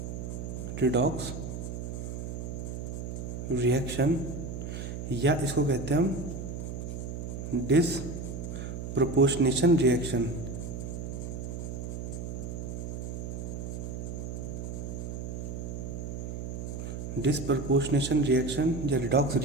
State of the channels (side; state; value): right; noise; hum, 6 dB below the sound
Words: रिडॉक्स रिएक्शन, या इसको कहते हैं हम डिसप्रोपोर्शनेशन रिएक्शन। डिसप्रपोर्शनेशन रिएक्शन या रिडॉक्स